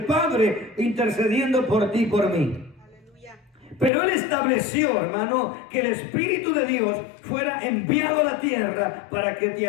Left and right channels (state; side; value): drops out; right; at 3.9 s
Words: Padre, intercediendo por ti y por mí. Pero Él estableció, hermano, que el Espíritu de Dios fuera enviado a la tierra para que te